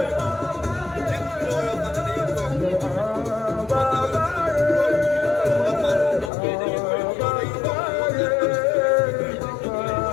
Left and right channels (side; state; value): right; drops out; at 6.3 s